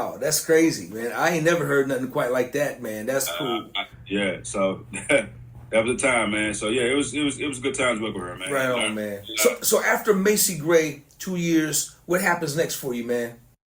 That's crazy, man. I ain't never heard nothing quite like that, man. That's cool. So that was the time, man. So, yeah, it was good times working with her, man. Right on, man. So after Macy Gray, 2 years, what happens next for you, man?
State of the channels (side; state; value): both; identical; correlation 1.00